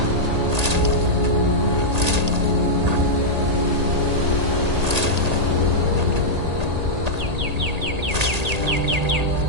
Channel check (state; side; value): late; left; 1.8 ms